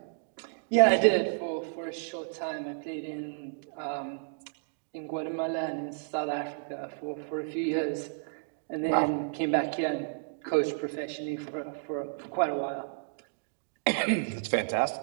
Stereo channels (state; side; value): silent; left; digital silence